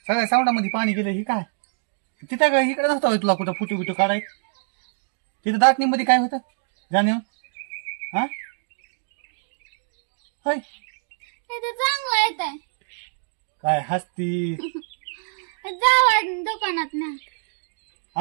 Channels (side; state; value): left; silent; digital silence